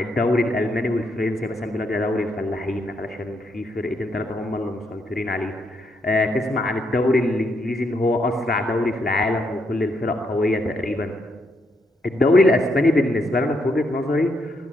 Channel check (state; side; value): normal; both; correlation 0.77